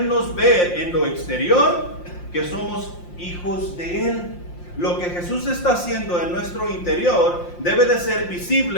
ver en lo exterior que somos hijos de Él. Lo que Jesús está haciendo en nuestro interior debe de ser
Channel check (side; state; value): right; late; 5.7 ms